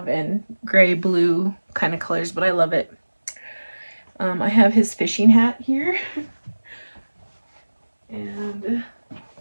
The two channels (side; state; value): both; inverted; correlation -1.00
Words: and gray blue kind of colors, but I love it. I have his fishing hat here. And